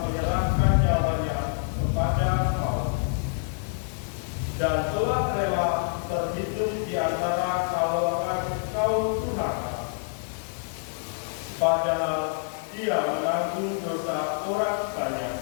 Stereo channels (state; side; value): silent; right; digital silence